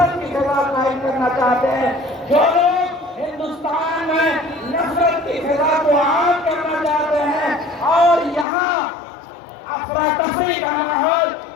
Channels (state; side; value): drops out; right; at 8.5 s